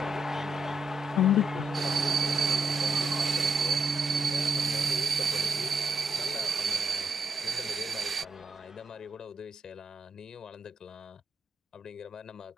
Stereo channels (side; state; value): both; normal; correlation 0.79